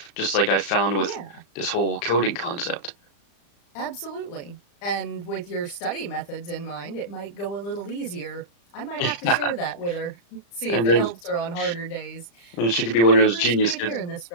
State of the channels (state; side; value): late; right; 35 ms